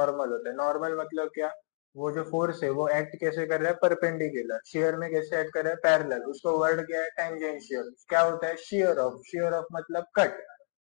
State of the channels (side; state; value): right; silent; digital silence